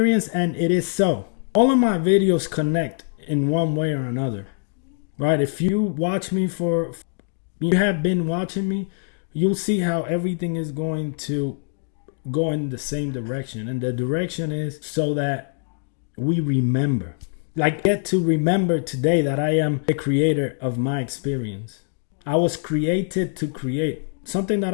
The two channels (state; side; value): silent; right; digital silence